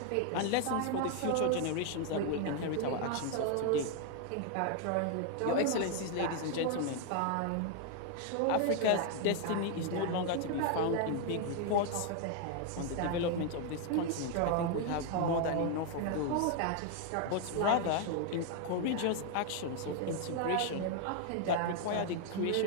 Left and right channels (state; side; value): different; both; correlation 0.00